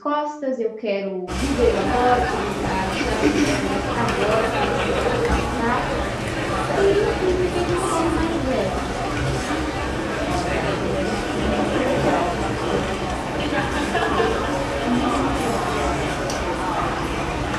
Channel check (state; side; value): identical; both; correlation 1.00